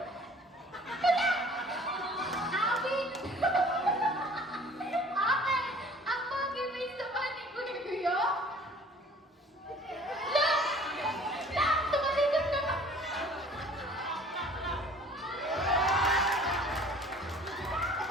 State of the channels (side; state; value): both; normal; correlation 0.51